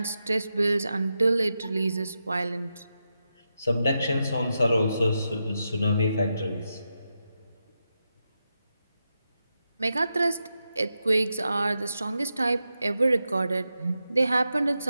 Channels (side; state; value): both; inverted; correlation -0.87